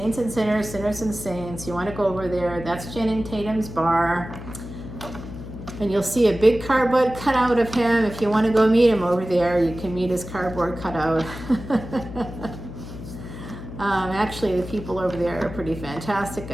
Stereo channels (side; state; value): left; noise; hum, 11 dB below the sound